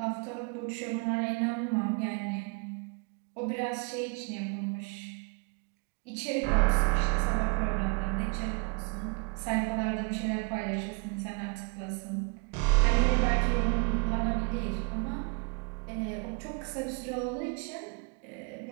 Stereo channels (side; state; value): left; quieter; 30.3 dB